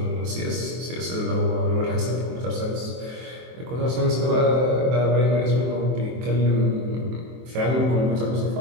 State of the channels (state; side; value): late; left; 23 ms